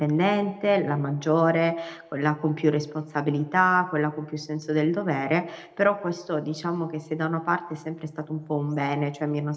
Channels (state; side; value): identical; both; correlation 1.00